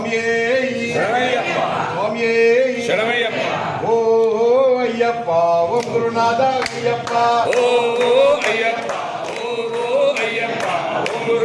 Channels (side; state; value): both; identical; correlation 1.00